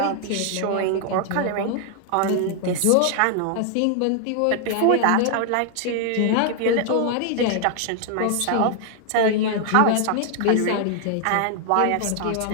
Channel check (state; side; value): different; both; correlation 0.00